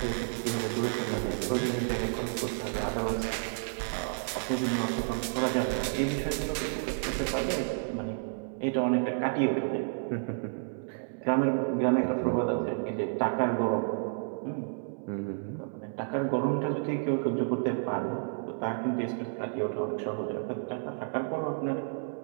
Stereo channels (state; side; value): silent; left; 57 dB below the other